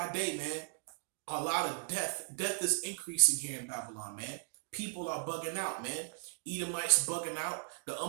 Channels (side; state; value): left; silent; 53 dB below the other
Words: day, man, a lot of death. Death is increasing here in Babylon, man. People are bugging out, man. Edomites bugging out. The